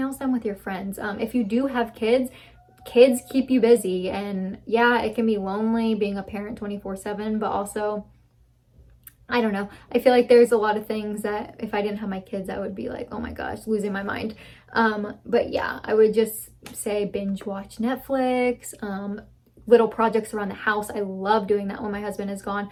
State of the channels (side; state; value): both; identical; correlation 1.00